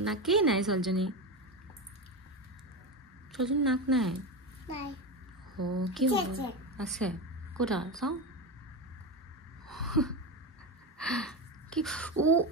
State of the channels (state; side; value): normal; both; correlation 0.18